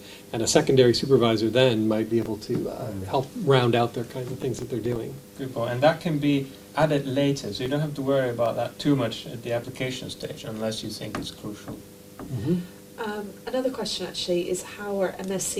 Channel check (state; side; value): identical; both; correlation 1.00